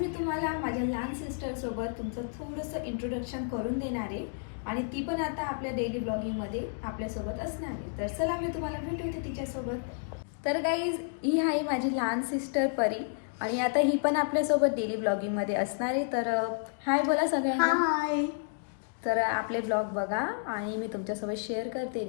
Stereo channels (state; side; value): silent; right; digital silence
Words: तुम्हाला माझ्या लहान सिस्टरसोबत तुमचं थोडंसं इंट्रोडक्शन करून देणार आहे. आणि ती पण आता आपल्या डेली ब्लॉगिंगमध्ये आपल्यासोबत असणार आहे. तर चला मी तुम्हाला भेटवते तिच्यासोबत. तर गाईज, ही आहे माझी लहान सिस्टर परी आणि आता ही पण आपल्यासोबत डेली ब्लॉगिंगमध्ये असणार आहे. तर हाय बोला सगळ्यांना. हाय. तर आपले ब्लॉग बघा आणि मी तुमच्यासोबत शेअर करते